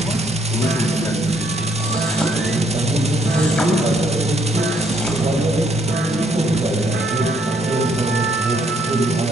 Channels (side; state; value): both; normal; correlation 0.69